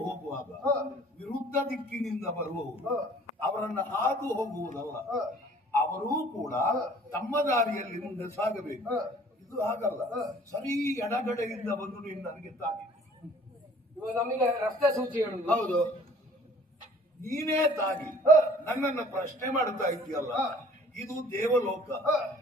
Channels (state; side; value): normal; both; correlation 0.53